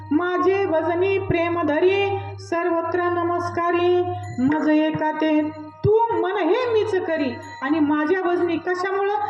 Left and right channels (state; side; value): identical; both; correlation 1.00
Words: माझे भजनी प्रेम धरी सर्वत्र नमस्कारी मज एका ते. तू मन हे मीच करी आणि माझ्या भजनी कशामुळं?